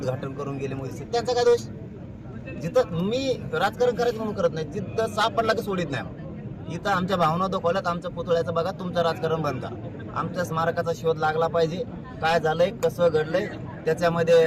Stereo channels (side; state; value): both; identical; correlation 1.00